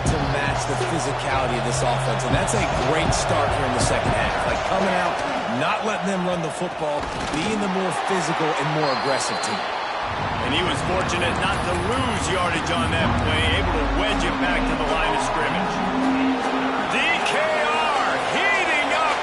to match the physicality of this offense. And that's a great start here in the second half. Like coming out, not letting them run the football, being the more physical and more aggressive team. And he was fortunate not to lose yardage on that play, able to wedge it back to the line of scrimmage. DKR heating up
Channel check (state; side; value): identical; both; correlation 1.00